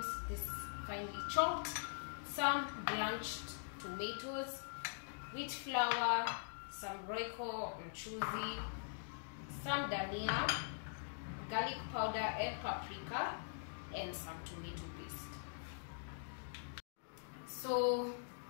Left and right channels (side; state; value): right; silent; digital silence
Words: this finely chopped, some blanched tomatoes, wheat flour, some royco mchuzi, some dhania, garlic powder and paprika, and some tomato paste. So